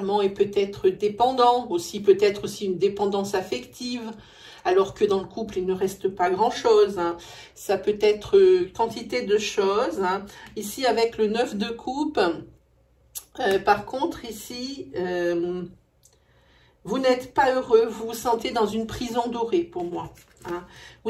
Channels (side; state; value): both; identical; correlation 1.00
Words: est peut-être dépendant. Aussi peut-être aussi une dépendance affective. Alors que dans le couple, il ne reste pas grand-chose. Ça peut être quantité de choses. Ici, avec le 9 de coupe... par contre, ici, vous n'êtes pas heureux, vous vous sentez dans une prison dorée pour moi.